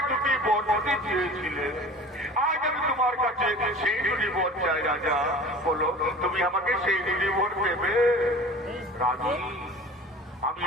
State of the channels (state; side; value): normal; both; correlation 0.41